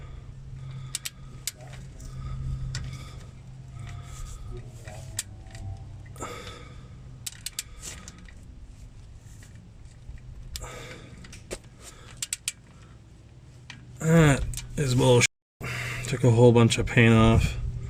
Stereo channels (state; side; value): identical; both; correlation 1.00